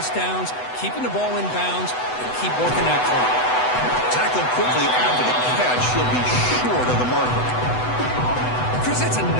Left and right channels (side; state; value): right; late; 8.0 ms